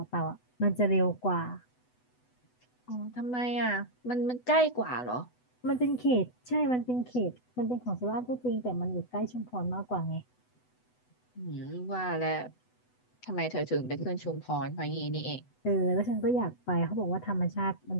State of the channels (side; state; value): right; late; 8.0 ms